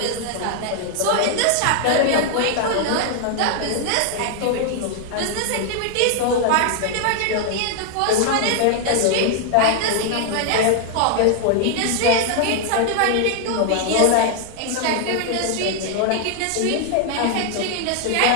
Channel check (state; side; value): different; both; correlation 0.00